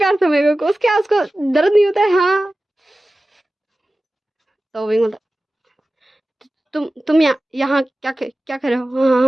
से मेरे को? उसके उसको दर्द नहीं होता है? हाँ। तो विंग बोलता, तुम यहाँ क्या कर रहे हो? हाँ,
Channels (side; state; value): both; normal; correlation 0.95